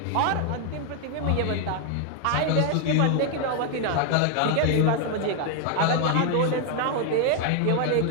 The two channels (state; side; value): different; both; correlation 0.00